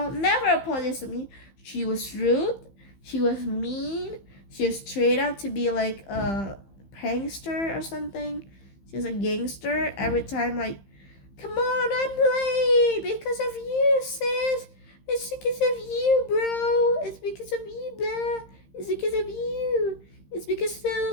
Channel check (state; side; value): late; right; 15 ms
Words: never apologized to me. She was rude. She was mean. She was straight up to be like a prankster or something. She was a gangster. Every time, like, come on, I'm late because of you, sis. It's because of you, bro. It's because of you, blah. It's because of you. It's because